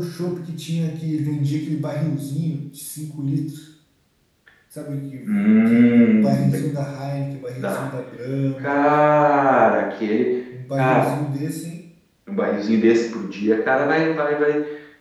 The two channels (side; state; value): both; identical; correlation 1.00